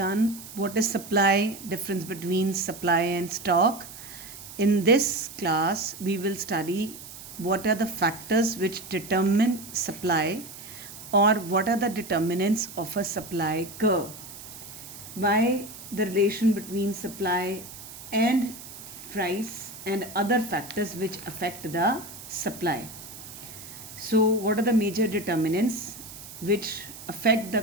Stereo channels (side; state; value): right; noise; hiss, 14 dB below the sound